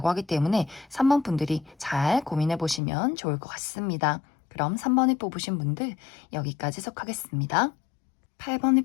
하기 때문에 3번 분들이 잘 고민해 보시면 좋을 것 같습니다. 그럼 3번을 뽑으신 분들 여기까지 속하겠습니다.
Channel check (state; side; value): drops out; right; at 2.8 s